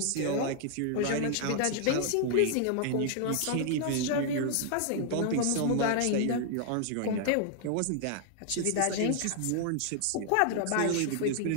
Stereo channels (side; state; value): both; different; correlation 0.00